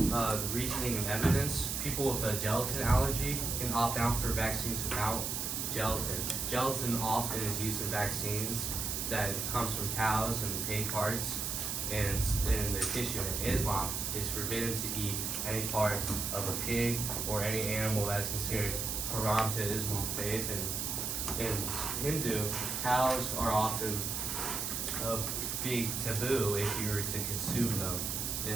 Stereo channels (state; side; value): noise; right; hiss, 2 dB below the sound